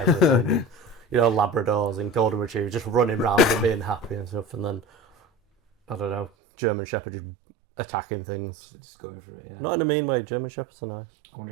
everything. And, Labradors and Golden Retrievers just running around and being happy and stuff, and then I don't know, German Shepherd just attacking things. Just going for it, yeah. Not in a mean way. German Shepherds are nice,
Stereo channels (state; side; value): drops out; left; at 6.3 s